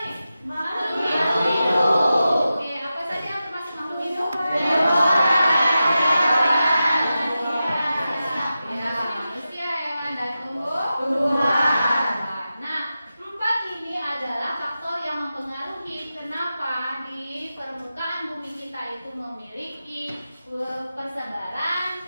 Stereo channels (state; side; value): inverted; both; correlation -0.92